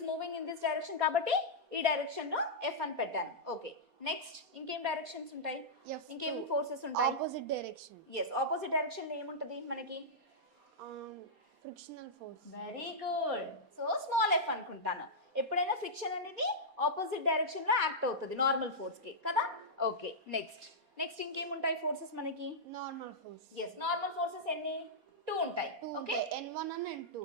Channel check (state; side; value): late; left; 4.2 ms